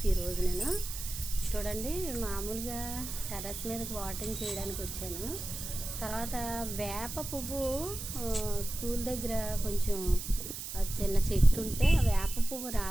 ఈరోజు నేను చూడండి మామూలుగా టెర్రస్ మీదకి వాటరింగ్ చేయడానికి వచ్చాను. తర్వాత వేప పువ్వు స్కూల్ దగ్గర కొంచెం చిన్న చెట్టు ఉంటే ఆ వేప పువ్వు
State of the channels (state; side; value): noise; right; hiss, 7 dB below the sound